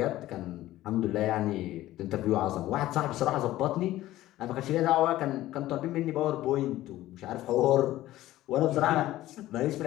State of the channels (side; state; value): right; quieter; 15.3 dB